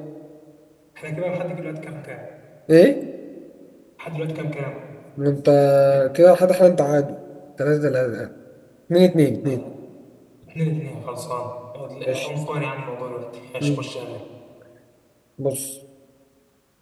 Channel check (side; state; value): both; identical; correlation 1.00